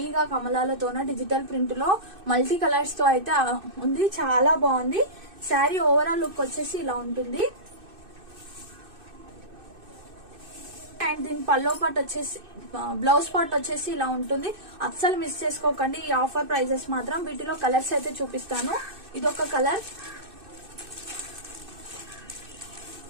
కమలాలతోన డిజిటల్ ప్రింట్ లో మల్టీ కలర్స్ తో అయితే ఉంది. చాలా బాగుంది శారీ. ఓవరాల్ లుక్ వచ్చేసి ఇలా ఉంటుంది. అండ్ దీని పల్లో పార్ట్ వచ్చేసి బ్లౌజ్ పార్ట్ వచ్చేసి ఇలా ఉంటుంది. అస్సలు మిస్ చేసుకోకండి ఈ ఆఫర్ ప్రైజెస్ మాత్రం. వీటిలో కలర్స్ అయితే చూపిస్తాను. ఇదొక కలర్,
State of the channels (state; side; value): late; left; 2.6 ms